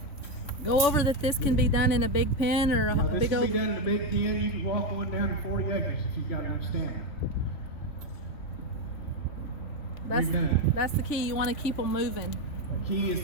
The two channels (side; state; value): right; late; 3.5 ms